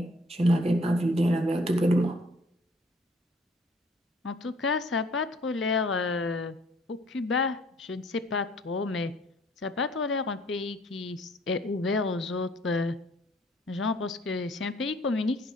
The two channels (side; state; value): both; normal; correlation 0.59